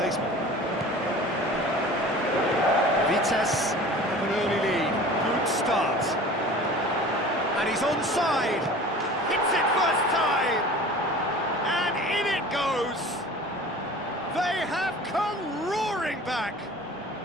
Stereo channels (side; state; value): both; normal; correlation 0.41